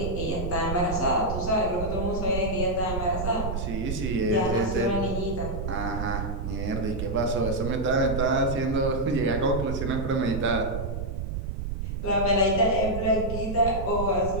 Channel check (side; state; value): right; noise; rumble, 4 dB below the sound